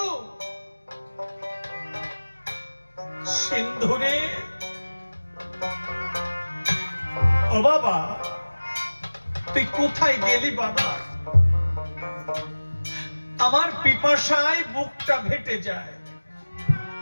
সিন্ধুরে, ও বাবা, তুই কোথায় গেলি বাবা? আমার পিপাসায় বুকটা ফেটে যায়,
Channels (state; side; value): inverted; both; correlation -1.00